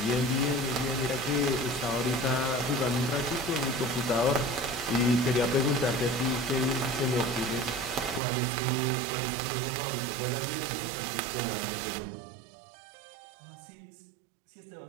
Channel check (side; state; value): left; drops out; at 8.2 s